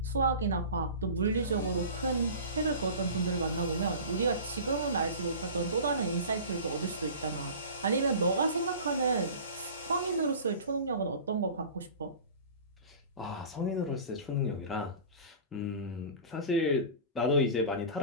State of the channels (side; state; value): both; inverted; correlation -0.37